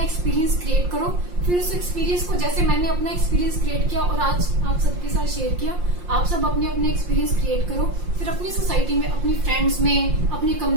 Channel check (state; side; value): late; left; 5.7 ms